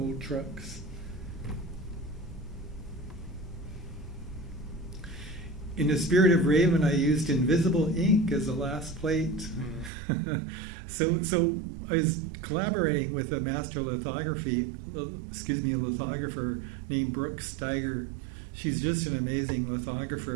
trucks. In the spirit of Raven, I used invisible ink as the last plate. So I was collaborating with a master lithographer named Brooke Steiger. She's just an amazing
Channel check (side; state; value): left; drops out; at 9.9 s